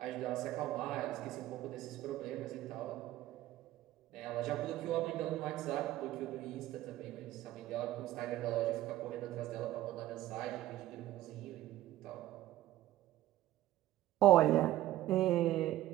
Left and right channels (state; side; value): quieter; left; 14.5 dB